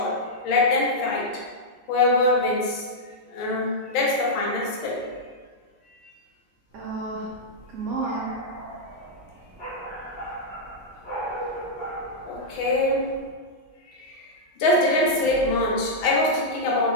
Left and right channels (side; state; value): both; normal; correlation -0.07